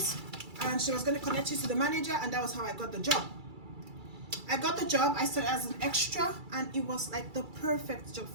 and she was going to connect you to the manager, and that was how I got the job. I got the job. I started as an extra, and it was like the perfect job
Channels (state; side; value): late; left; 2.3 ms